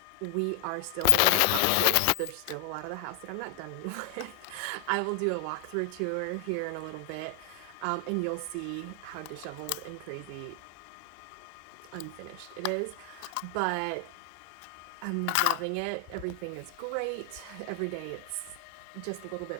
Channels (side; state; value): both; different; correlation 0.00